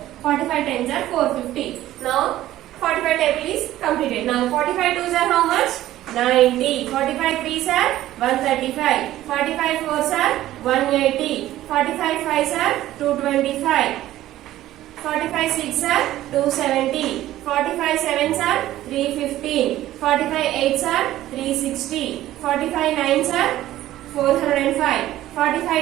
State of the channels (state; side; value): quieter; left; 14.3 dB